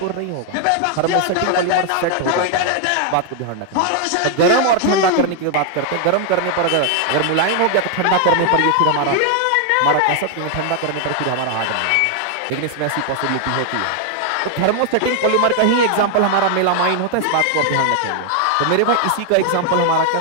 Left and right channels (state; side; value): different; both; correlation 0.00